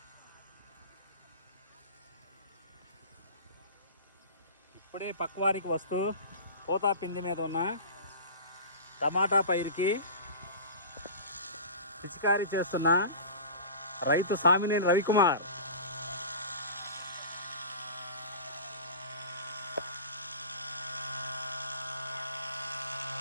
ఇప్పుడే పక్వారికి వస్తూ పోతా పిండి మీద ఉన్న టమాటా పైరుకి పిచికారీ చేస్తున్న రైతు Samineni Ravikumar.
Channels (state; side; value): inverted; both; correlation -0.34